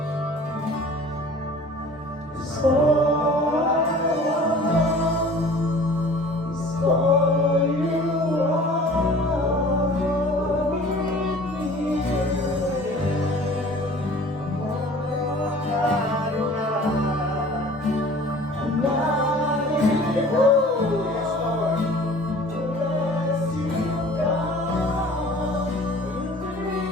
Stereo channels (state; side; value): normal; both; correlation 0.46